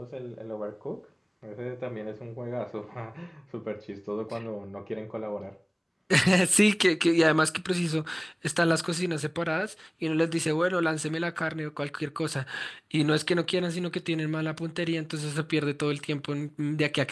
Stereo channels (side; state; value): both; identical; correlation 1.00